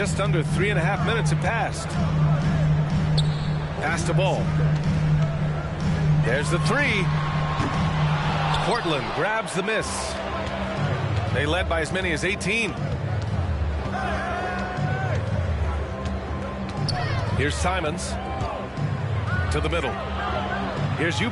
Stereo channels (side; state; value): both; identical; correlation 1.00